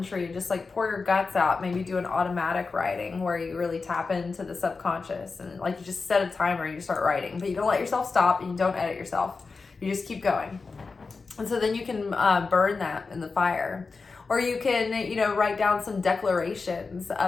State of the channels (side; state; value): right; quieter; 4.4 dB